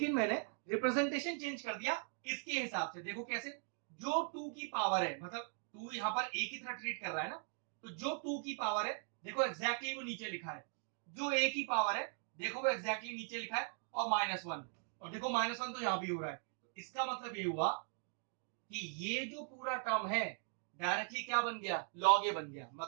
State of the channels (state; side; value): silent; left; 51 dB below the other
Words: मैंने रिप्रेजेंटेशन चेंज कर दिया इसके हिसाब से। देखो कैसे, जो 2 की पावर है, मतलब 2 यहां पर a की तरह ट्रीट कर रहा है ना, तो जो 2 की पावर है देखो एग्जैक्टली वो नीचे लिखा है, जो a की पावर है देखो वो एग्जैक्टली नीचे लिखा है, और -1, और देखो -1 तो यहां भी हो रहा है। तो इसका मतलब ये हुआ कि ये जो पूरा टर्म है डायरेक्टली क्या बन गया, log a बन गया।